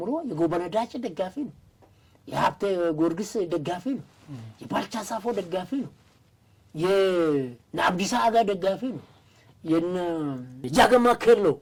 የጎበነዳጭ ደጋፊ ነው፣ የሀብቴ ጊዮርጊስ ደጋፊ ነው፣ የባልቻ ሳፎ ደጋፊ ነው፣ የአብዲሳ አጋ ደጋፊ ነው፣ የጃገማ ኬሎ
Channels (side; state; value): both; identical; correlation 1.00